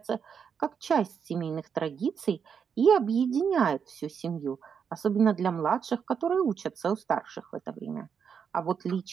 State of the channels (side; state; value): left; quieter; 6.9 dB